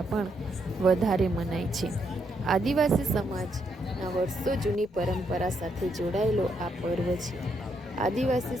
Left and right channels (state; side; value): normal; both; correlation 0.77